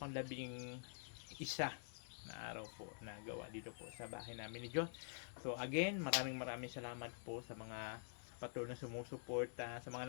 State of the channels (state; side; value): silent; right; digital silence